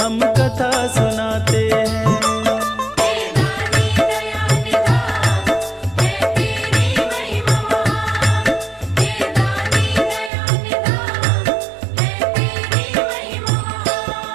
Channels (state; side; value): drops out; left; at 10.3 s